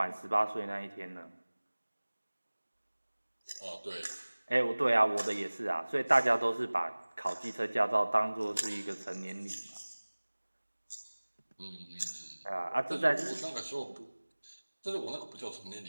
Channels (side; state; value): both; inverted; correlation -1.00